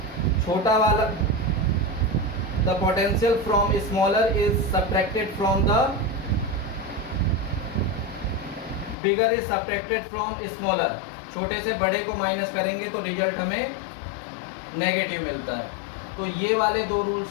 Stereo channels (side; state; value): right; drops out; at 9.0 s